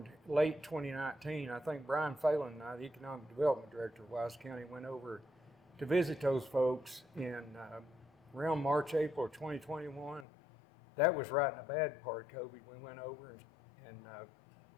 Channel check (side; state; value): right; drops out; at 10.2 s